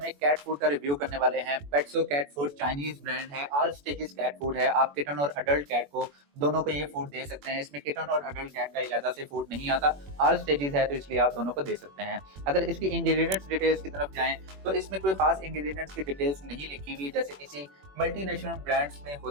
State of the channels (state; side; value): late; left; 21 ms